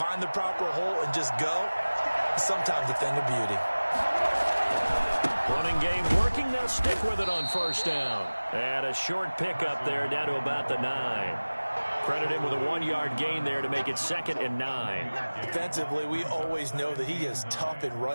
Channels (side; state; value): both; inverted; correlation -1.00